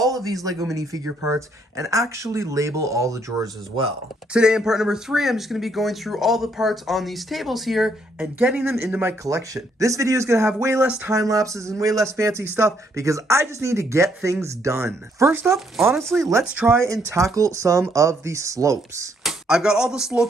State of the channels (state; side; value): normal; both; correlation 0.71